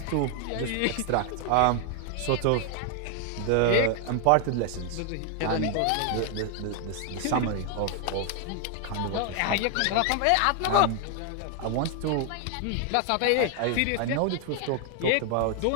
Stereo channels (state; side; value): different; both; correlation 0.00